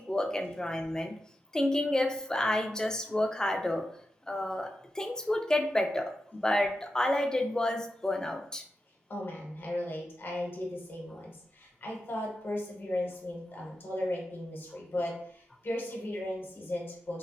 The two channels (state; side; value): normal; both; correlation 0.90